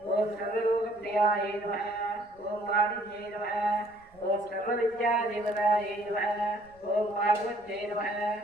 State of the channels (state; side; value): noise; right; rumble, 28 dB below the sound